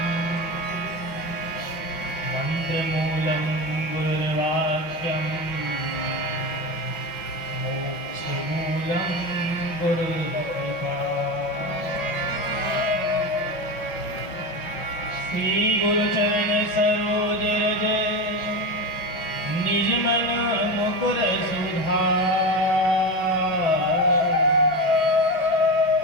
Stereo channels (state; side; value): late; right; 5.7 ms